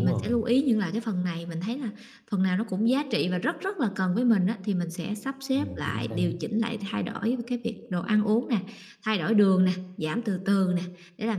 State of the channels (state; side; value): identical; both; correlation 1.00